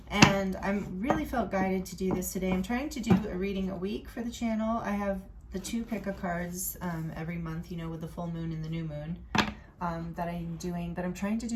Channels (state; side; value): identical; both; correlation 1.00